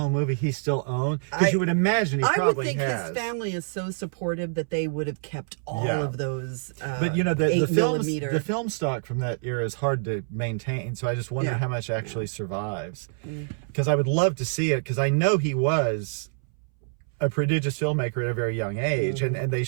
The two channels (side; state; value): left; silent; 61 dB below the other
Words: movies he still owns. Because you would imagine he probably has. I would think his family is so supportive that they would have kept all of those. But the 8mm. The film stock from that era is hard to maintain. So I just wonder how much actually survives. Because I would love to see it. Because I know he was a prodigious filmmaker at a very young age, and they